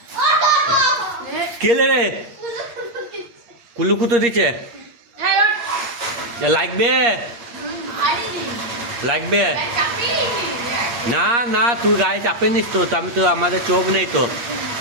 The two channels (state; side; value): late; left; 8.5 ms